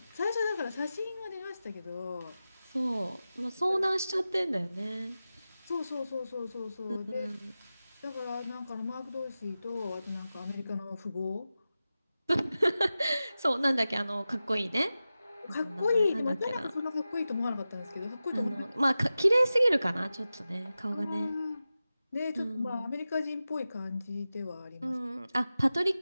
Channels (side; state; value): both; inverted; correlation -0.94